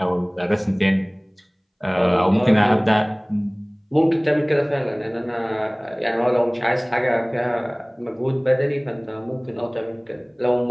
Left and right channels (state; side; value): identical; both; correlation 1.00